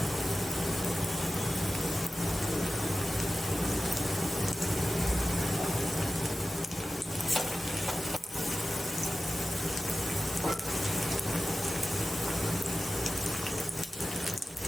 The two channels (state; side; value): normal; both; correlation 0.96